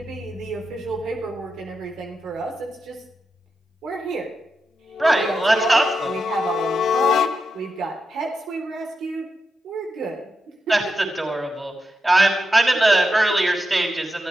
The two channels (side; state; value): both; normal; correlation 0.87